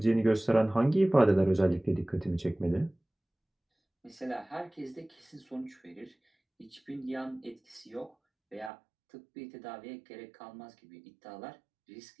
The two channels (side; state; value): left; drops out; at 8.7 s